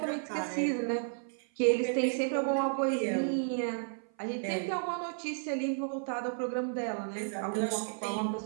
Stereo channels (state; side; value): silent; left; 56 dB below the other